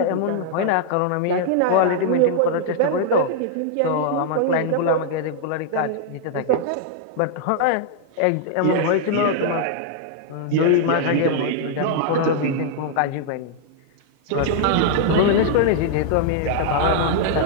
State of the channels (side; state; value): both; different; correlation -0.01